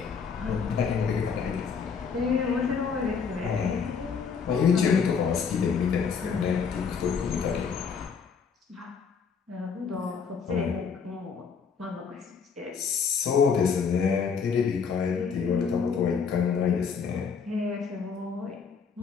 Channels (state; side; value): quieter; right; 6.0 dB